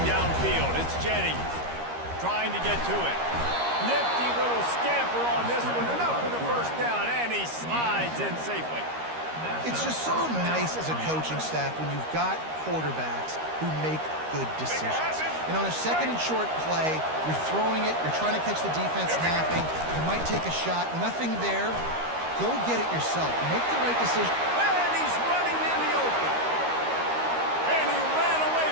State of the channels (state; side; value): late; left; 13 ms